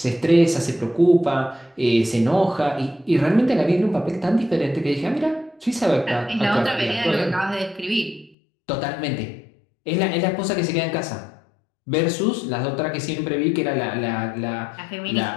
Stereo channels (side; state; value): right; drops out; at 8.3 s